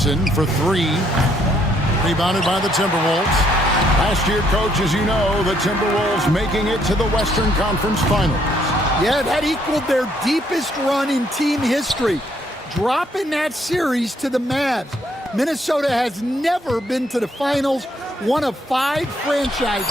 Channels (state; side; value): normal; both; correlation 0.69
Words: for three. Rebounded by the Timberwolves. Last year, coach, as you know, the Timberwolves making it to the Western Conference Finals. Yeah, that equaled their deepest run in team history, dropping that series to the Mavs. Minnesota has never been to the finals, one of 5